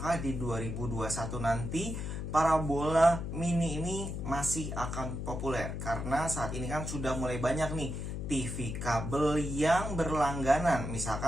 di 2021 nanti parabola mini ini masih akan populer? Karena saat ini kan sudah mulai banyak nih TV kabel yang berlangganan,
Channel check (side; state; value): left; noise; hum, 5 dB below the sound